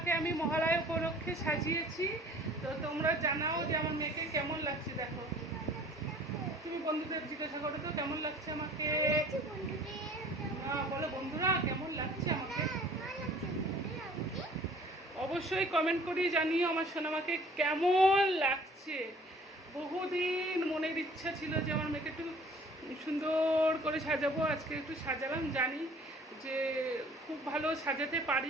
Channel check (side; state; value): both; normal; correlation 0.52